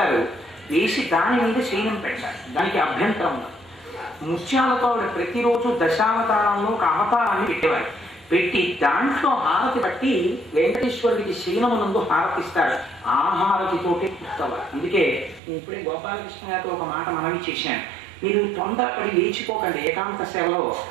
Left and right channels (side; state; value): left; drops out; at 15.4 s